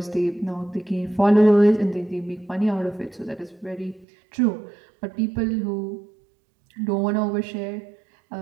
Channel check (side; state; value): left; drops out; at 4.0 s